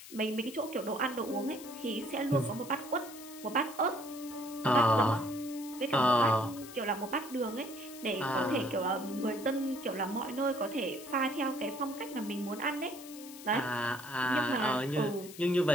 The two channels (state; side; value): noise; left; hiss, 15 dB below the sound